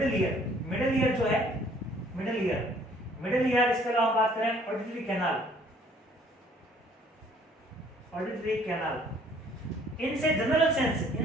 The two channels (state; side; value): normal; both; correlation 0.59